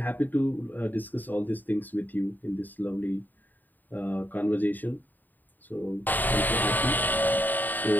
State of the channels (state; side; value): late; right; 0.088 ms